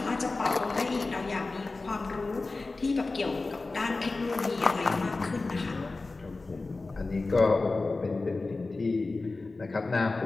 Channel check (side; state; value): right; quieter; 3.5 dB